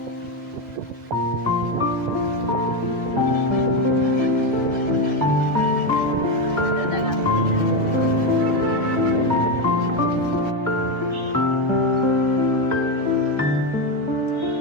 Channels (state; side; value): normal; both; correlation 0.10